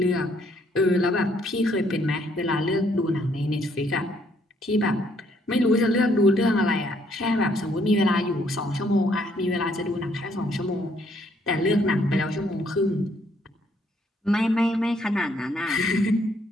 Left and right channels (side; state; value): both; normal; correlation 0.68